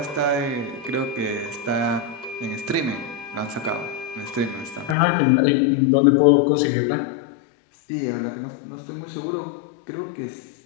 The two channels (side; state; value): right; drops out; at 5.0 s